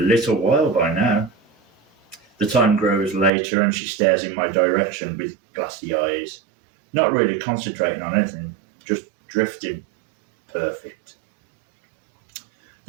while by now. The time grows later and she stares in my direction with glassy eyes. Not really concentrating on anything, just drifting. Perfect.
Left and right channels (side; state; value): left; drops out; at 3.3 s